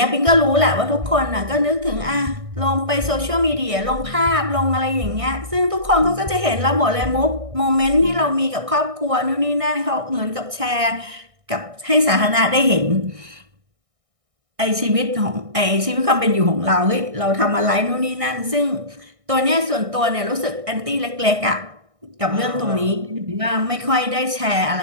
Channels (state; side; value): late; left; 1.6 ms